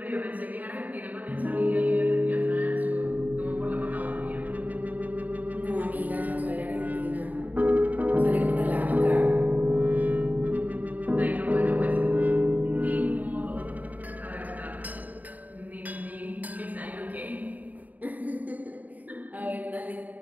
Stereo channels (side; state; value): left; late; 0.078 ms